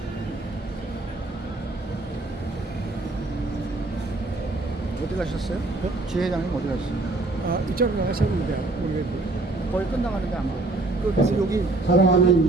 어디 가셨어요? 지회장님 어디 가셨어요? 이쪽으로 가셨는데 모르겠고 거의 끝나가는데 안 보여요. 그래서 여기 사랑하는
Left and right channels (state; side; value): quieter; left; 3.1 dB